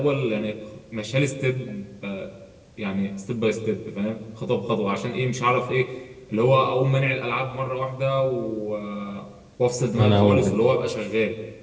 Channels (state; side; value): identical; both; correlation 1.00